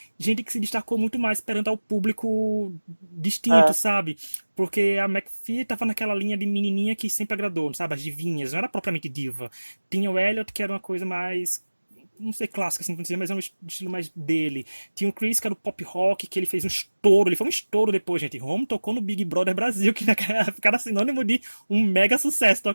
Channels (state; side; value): inverted; both; correlation -1.00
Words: gente que se destacou muito mais perante ao público distinto, É, sabe? Porque a McPhee tava naquela linha de menininha que sempre agradou, sabe? As divinhas, não era propriamente diva. Tinha o Elliot, que era uma coisa mais, não sei, clássica, assim, dizer, mas é um estilo mais dele. Tinha o Chris, que era o pop rock, que ele fez um estouro. Ele foi um estouro depois, gente. Home tocou no Big Brother Brasil, que naquela época era sinônimo de um mega sucesso